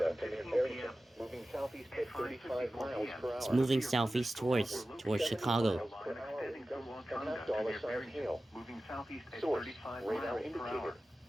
to near Barrington, moving southeast at 35 miles per hour. It's moving southeast towards Chicago. Per hour, and $5 hail. Source, radar indicator.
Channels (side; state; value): both; normal; correlation 0.95